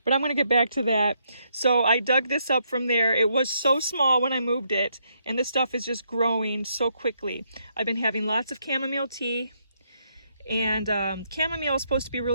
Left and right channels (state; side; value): inverted; both; correlation -0.76